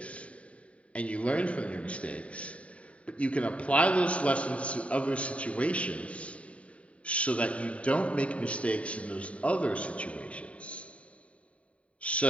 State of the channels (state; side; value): late; right; 0.065 ms